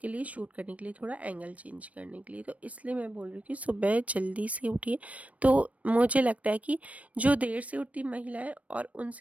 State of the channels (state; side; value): late; left; 0.067 ms